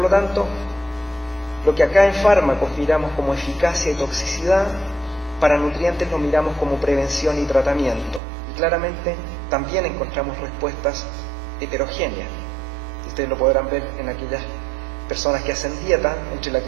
lo tanto, lo que acá en fármacos miramos como eficacia y toxicidad, para nutrientes lo miramos como prevención y tratamiento. Y claramente también encontramos respuestas heterogéneas. Ustedes lo podrán ver en aquellas personas que hacen dieta, entre la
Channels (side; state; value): left; drops out; at 8.2 s